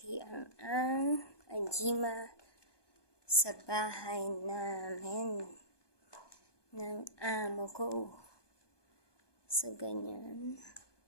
ang ajima sa bahay namin ng amo ko. So, ganyan.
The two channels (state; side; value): late; right; 1.2 ms